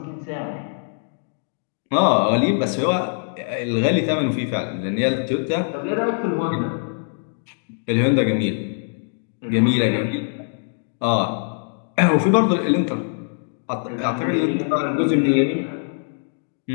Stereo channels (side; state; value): right; silent; 63 dB below the other